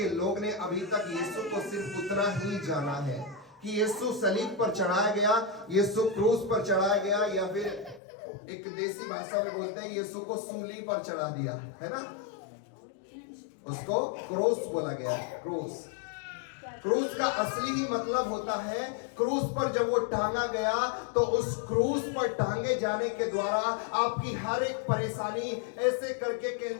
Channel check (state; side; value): drops out; right; at 8.0 s